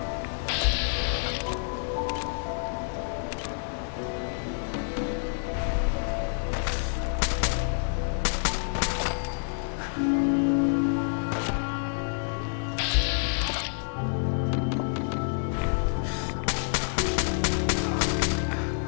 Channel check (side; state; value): right; silent; 59 dB below the other